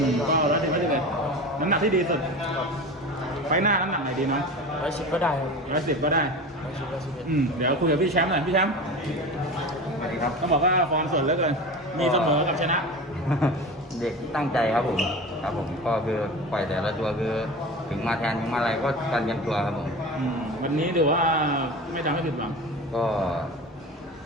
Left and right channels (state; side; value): normal; both; correlation 0.31